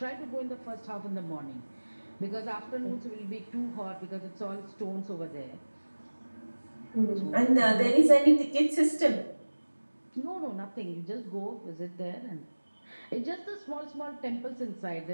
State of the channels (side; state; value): both; inverted; correlation -1.00